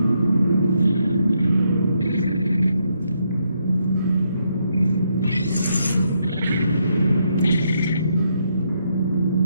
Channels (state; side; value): inverted; both; correlation -0.77